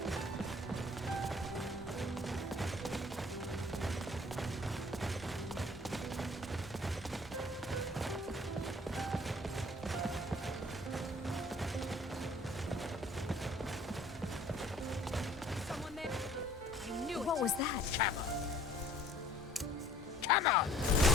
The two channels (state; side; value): normal; both; correlation 0.55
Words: What was that? Come on!